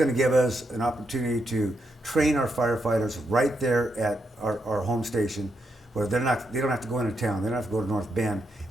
to give us an opportunity to train our firefighters right there at our home station, where they don't have to go into town. They don't have to go to North Bend.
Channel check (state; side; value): normal; both; correlation 0.81